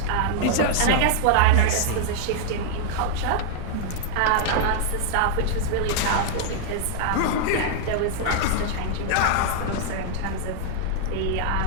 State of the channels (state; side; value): different; both; correlation -0.01